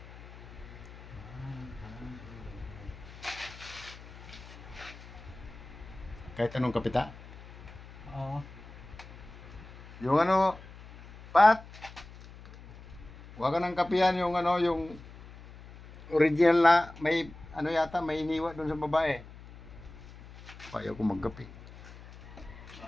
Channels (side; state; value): left; noise; hum, 17 dB below the sound